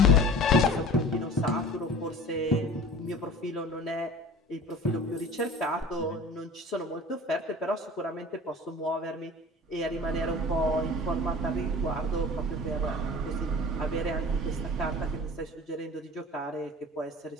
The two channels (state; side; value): normal; both; correlation 0.40